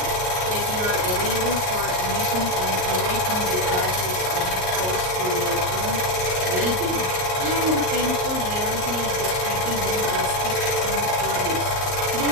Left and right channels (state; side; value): late; left; 38 ms